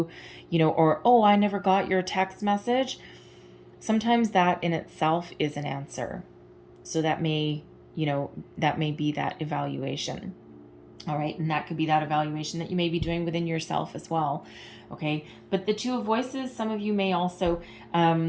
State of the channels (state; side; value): identical; both; correlation 1.00